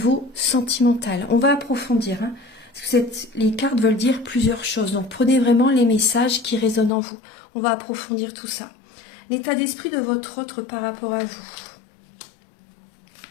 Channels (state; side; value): drops out; right; at 6.9 s